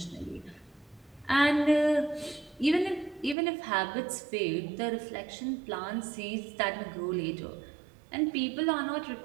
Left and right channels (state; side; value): drops out; left; at 3.4 s